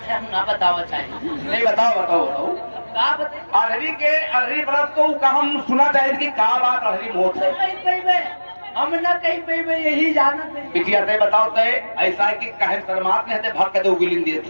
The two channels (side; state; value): both; inverted; correlation -1.00